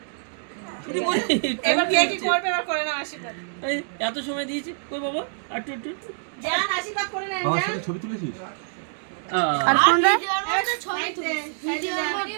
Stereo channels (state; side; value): silent; left; digital silence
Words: এবার কে কি করবে এবার করে নাও আশীর্বাদ। এত সময় দিয়েছি কই বাবা আর একটু জান আশীর্বাদ করে নেন বাবার জান। সাথে ছবি তুলেছিস আর কোনটা এবার ছবি তুলে